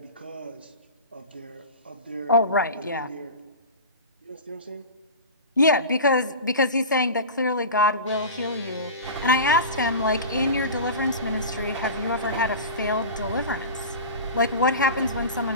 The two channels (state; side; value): inverted; both; correlation -0.31